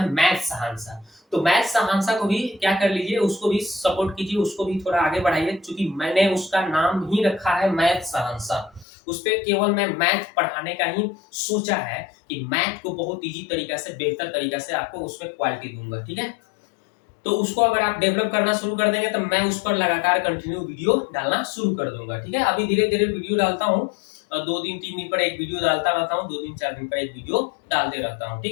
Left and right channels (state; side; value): drops out; right; at 8.8 s